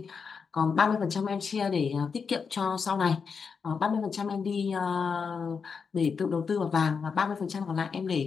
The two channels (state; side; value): quieter; right; 5.7 dB